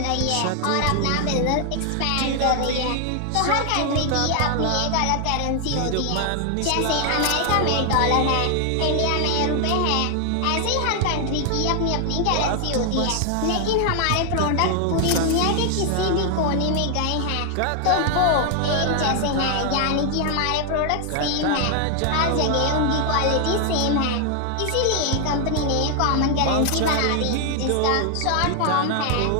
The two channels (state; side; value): different; both; correlation 0.00